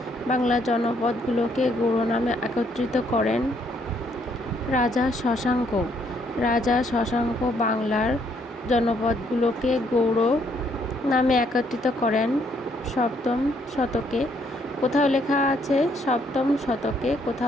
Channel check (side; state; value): both; normal; correlation 0.70